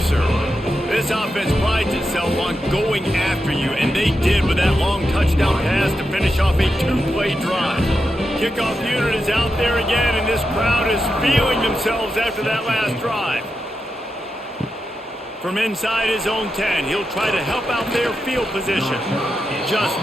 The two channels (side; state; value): both; normal; correlation 0.88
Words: This offense prides itself on going after you, and they did with that long touchdown pass to finish off a 2-play drive. Kickoff unit is out there again, and this crowd is feeling themselves after that last drive. From inside his own 10, he'll try to help out their field position. Just